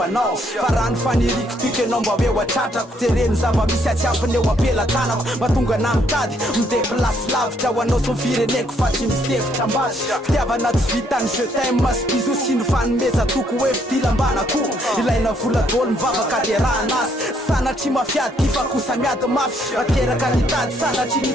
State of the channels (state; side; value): normal; both; correlation 0.70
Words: anao fa raha ny faniriko tiky anao mba hoe hoatratrako jereny zava misy atsiampiny eo ampelatanako mahatonga na mitady mideplasy lavitra ho anao som fireneko fa tsy misefitra ambasy fitiavana tsy vitany jetin masy bizo sy ny fanomeza toko hoe fidilambanako ilaina voladolo mivavaka de raha anasy sanatry mafiady kifa kosa miady mafy ateraka nitady sanatry